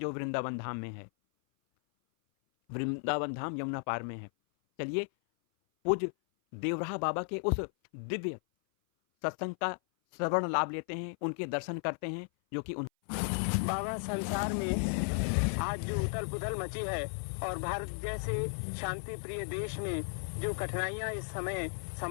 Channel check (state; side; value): silent; right; 55 dB below the other